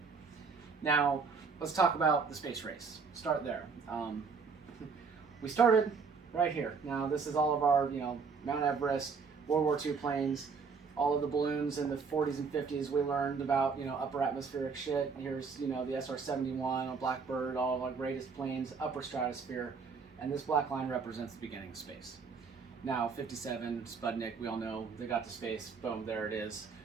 Now, let's talk about the space race. Start there. We started right here. Now, this is all of our, Mount Everest, World War II planes, all of the balloons in the 40s and 50s. We learned about, upper atmospheric shit. Here's, the SR-71, a Blackbird, all of our greatest planes, upper stratosphere, and this black line represents the beginning of space. Now, 57, Sputnik, we all know, they got to space, boom, there it is.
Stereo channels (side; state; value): left; quieter; 5.3 dB